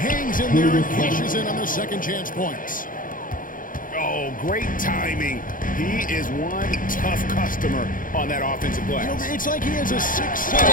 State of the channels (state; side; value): late; right; 0.40 ms